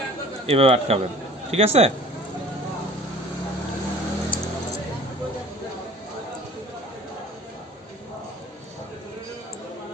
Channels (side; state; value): both; normal; correlation 0.47